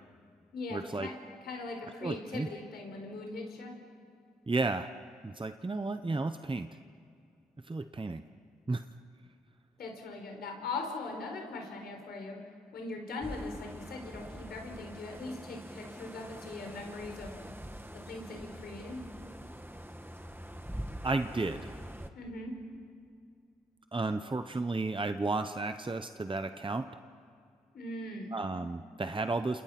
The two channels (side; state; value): both; normal; correlation 0.72